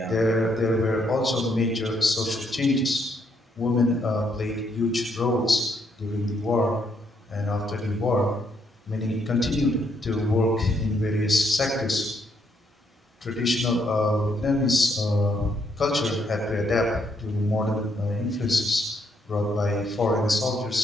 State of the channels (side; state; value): both; normal; correlation 0.74